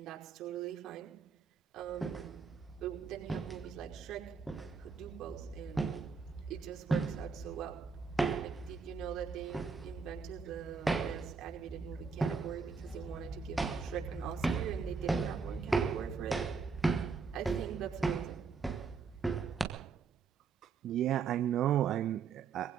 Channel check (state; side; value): quieter; left; 5.3 dB